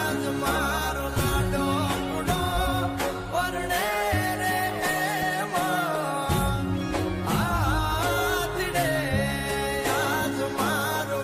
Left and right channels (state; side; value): identical; both; correlation 1.00